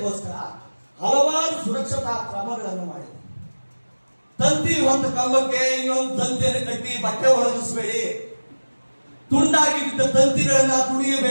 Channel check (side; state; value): both; inverted; correlation -1.00